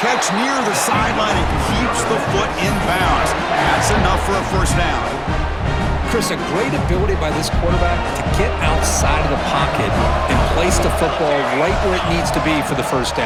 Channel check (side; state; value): both; identical; correlation 1.00